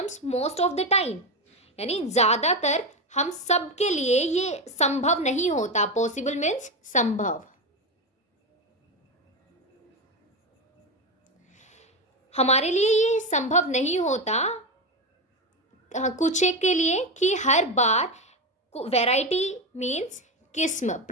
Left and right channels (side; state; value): both; normal; correlation 0.15